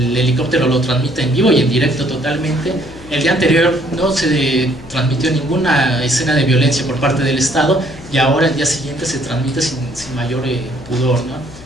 helicóptero lo transmite en vivo y en directo totalmente. El día anterior no se transmitió ninguna escena de violencia por parte del Estado, y ahora el día siguiente se transmite sin mayor pudor, ¿no?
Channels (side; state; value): left; noise; hum, 18 dB below the sound